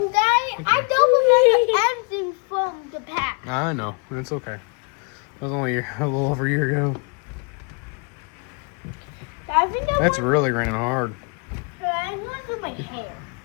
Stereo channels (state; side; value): quieter; right; 35.1 dB